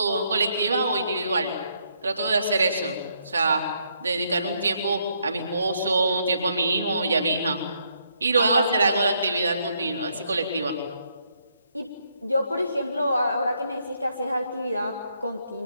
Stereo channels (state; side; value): inverted; both; correlation -0.74